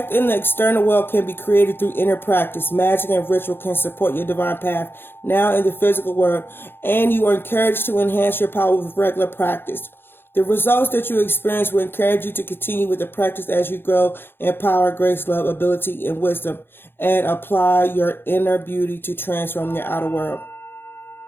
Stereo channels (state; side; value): late; right; 0.10 ms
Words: in the external world can be created through inner practice. Magic and ritual can support your divine path now in the physical world, and you are encouraged to enhance your power with regular practice. The results that you experience will encourage you to continue with the practice as you grow in power, grace, love, ability, and wisdom, and apply your inner beauty to transform your outer world.